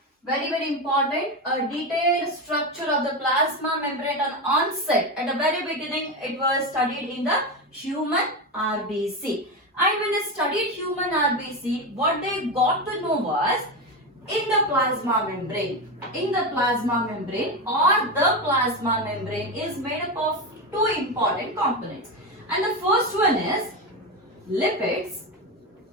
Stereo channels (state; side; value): normal; both; correlation 0.16